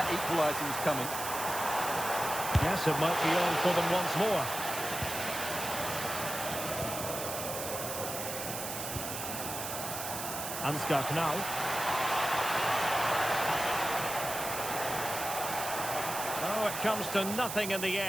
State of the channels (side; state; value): right; noise; hiss, 5 dB below the sound